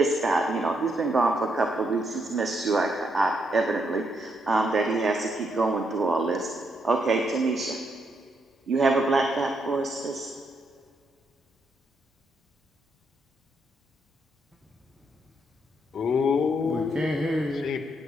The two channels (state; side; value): normal; both; correlation 0.77